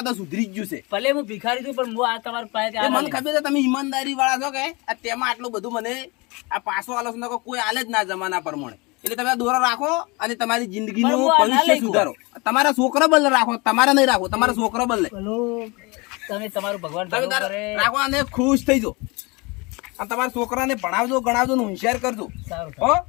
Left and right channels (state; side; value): quieter; right; 26.6 dB